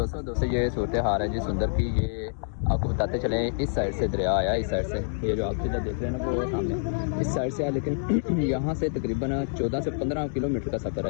दोस्तों ये सूरत हाल है जी सुंदर की। ये आपको बताते चले, इस साइड से दरिया आया, इस साइड से ये जो आप सीधा देख रहे हैं ना वो सामने इस साइड से आया, लेकिन यहाँ से तकरीबन 14 से 15 किलोमीटर का सफ़र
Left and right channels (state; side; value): silent; right; digital silence